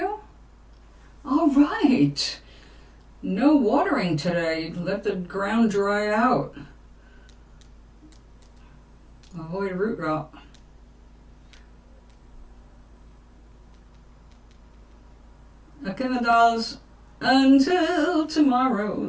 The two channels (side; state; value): both; identical; correlation 1.00